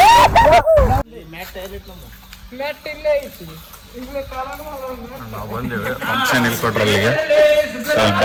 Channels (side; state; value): both; identical; correlation 1.00